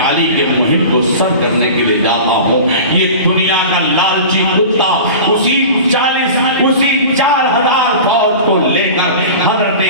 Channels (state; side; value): inverted; both; correlation -0.35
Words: علی کے مہم کو سر کرنے کے لیے جاتا ہوں۔ یہ دنیا کا لالچی کتا اسی 4000 فوج کو لے کر حضرت